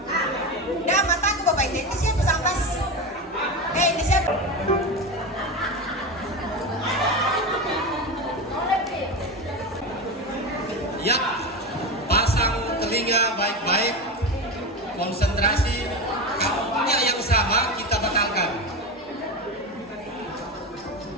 Dah mataku bapak ini siapa sampas? Ini siapa? Ya, pasang telinga baik-baik, konsentrasi, kampungnya yang sama kita batalkan.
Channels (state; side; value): normal; both; correlation 0.20